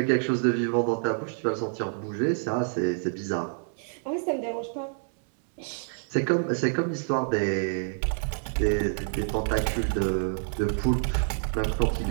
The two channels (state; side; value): silent; left; digital silence